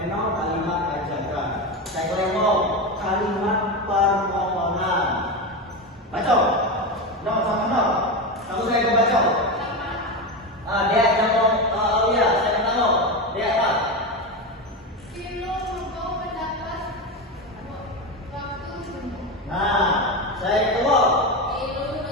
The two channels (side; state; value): both; normal; correlation 0.17